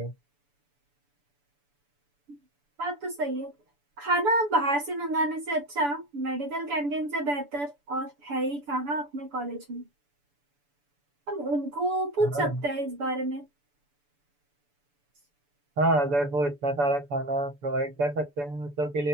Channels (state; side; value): late; left; 6.9 ms